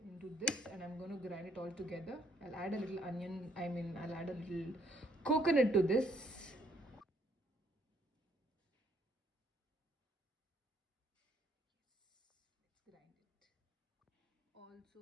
into this, and I'm going to grind it all together. I'll add a little onion, I'll add a little coconut to this. Let's grind it.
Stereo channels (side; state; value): both; normal; correlation 0.66